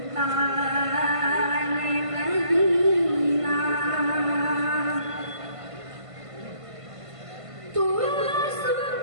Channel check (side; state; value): left; late; 1.5 ms